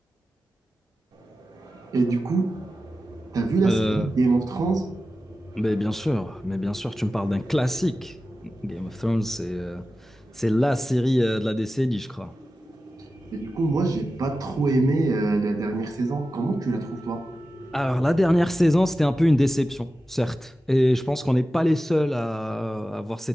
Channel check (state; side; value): normal; both; correlation 0.93